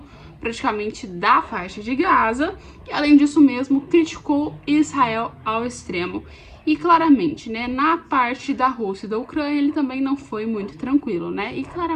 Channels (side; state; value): both; identical; correlation 1.00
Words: praticamente, da faixa de Gaza, e além disso mesmo, criticou Israel ao extremo. E claramente, né, na parte da Rússia e da Ucrânia, ele também não foi muito tranquilo, né? E